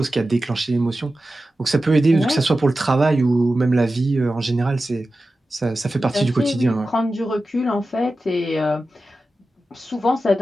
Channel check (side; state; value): both; normal; correlation 0.94